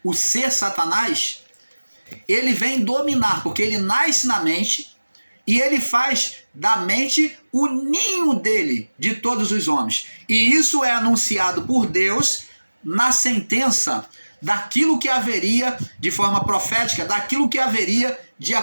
o ser Satanás, ele vem dominar, porque ele nasce na mente e ele faz da mente o ninho dele, de todos os homens. E isso é anunciado por Deus na sentença daquilo que haveria, de forma profética, daquilo que haveria de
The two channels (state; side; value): inverted; both; correlation -1.00